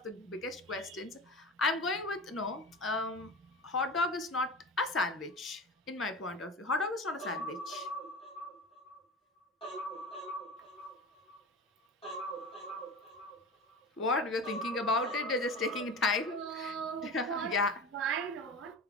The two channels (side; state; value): both; normal; correlation 0.31